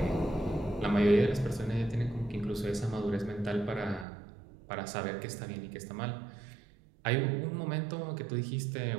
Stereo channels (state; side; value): drops out; left; at 4.0 s